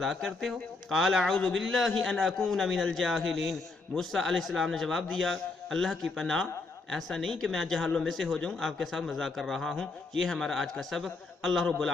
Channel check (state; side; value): quieter; right; 3.6 dB